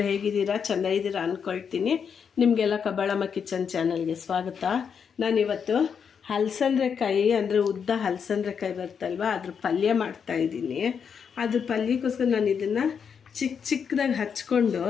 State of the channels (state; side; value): quieter; right; 6.9 dB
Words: ಹೇಗಿದ್ದೀರಾ? ಚೆನ್ನಾಗಿದ್ದೀರಾ ಅಂದ್ಕೊಳ್ತೀನಿ. ನಿಮಗೆಲ್ಲ ಕಬ್ಬಾಳಮ್ಮ ಕಿಚನ್ ಚಾನಲ್ಗೆ ಸ್ವಾಗತ. ನಾನಿವತ್ತು ಹಲಸಂದ್ರೆಕಾಯಿ ಅಂದರೆ ಉದ್ದ ಹಲಸಂದ್ರೆಕಾಯಿ ಬರ್ತಲ್ವ, ಅದ್ರ ಪಲ್ಯ ಮಾಡ್ತಾಯಿದ್ದೀನಿ. ಅದ್ರ ಪಲ್ಯಕ್ಕೋಸ್ಕರ ನಾನು ಇದನ್ನು ಚಿಕ್ಕದಾಗಿ ಹಚ್ಕೊಂಡು